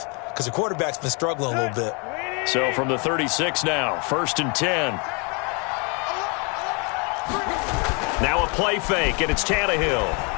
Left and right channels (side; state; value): right; quieter; 33.2 dB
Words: because the quarterback's been struggling a little bit. So from the 36 now, 1st and 10. Now a play fake, and it's Tannehill.